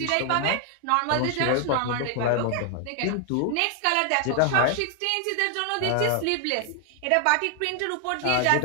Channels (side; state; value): both; different; correlation 0.00